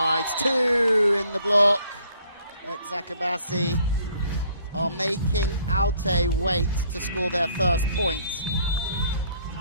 2 in the block. Eczacibasi are making Altay wait to score their first point.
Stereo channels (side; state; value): both; inverted; correlation -0.63